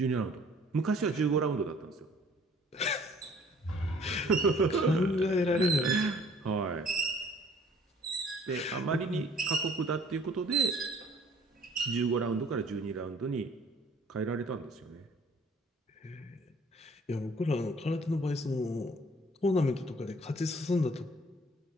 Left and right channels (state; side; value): normal; both; correlation 0.55